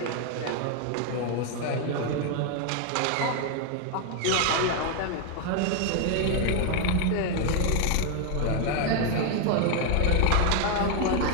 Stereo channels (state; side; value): different; both; correlation 0.01